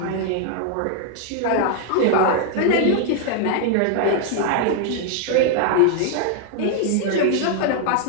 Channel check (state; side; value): different; both; correlation 0.00